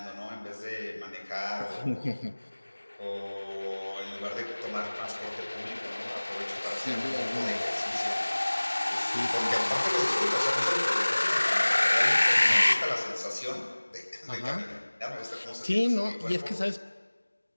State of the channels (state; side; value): inverted; both; correlation -1.00